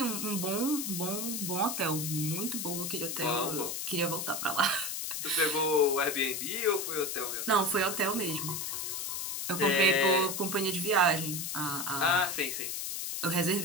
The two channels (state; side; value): noise; left; hiss, 3 dB below the sound